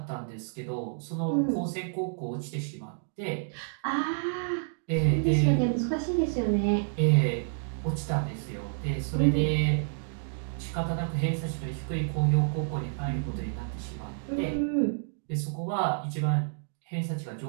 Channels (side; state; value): left; silent; digital silence